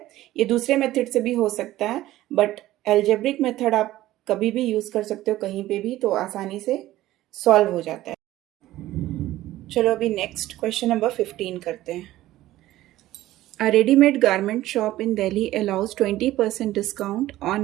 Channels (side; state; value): left; quieter; 15.3 dB